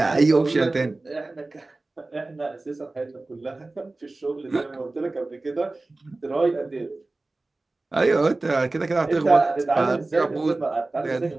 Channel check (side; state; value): left; quieter; 3.1 dB